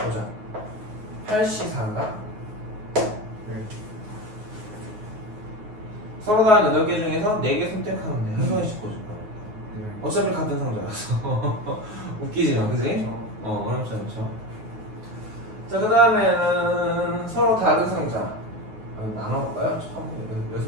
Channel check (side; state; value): left; late; 9.3 ms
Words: 8시 4인가? 네. 서로 다른 8개 중에서 4개 선택하면 돼. 한 송이씩 꽂을 거야. 네. 어차피 같은 상자라서 웃기지만, 그지? 어렵지 않죠. 자, 그 다음에는 서로 다른 상자 나눠볼까요?